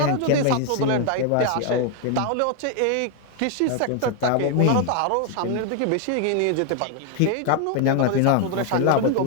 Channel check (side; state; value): both; different; correlation 0.01